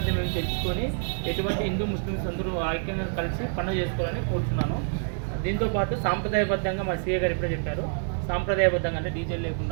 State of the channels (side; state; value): left; silent; 60 dB below the other